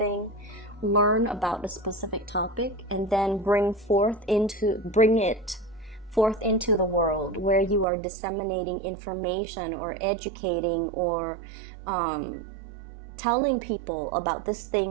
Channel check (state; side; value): drops out; left; at 7.9 s